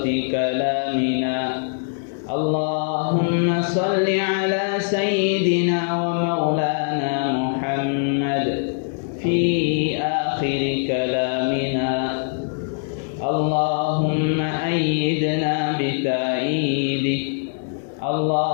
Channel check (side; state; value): right; silent; digital silence